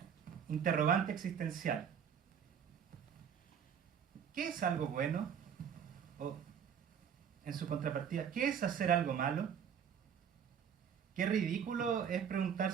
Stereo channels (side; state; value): left; quieter; 7.9 dB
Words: interrogante existencial. ¿Qué es algo bueno? O, en su contrapartida, ¿qué es hacer algo malo? Qué ridículo es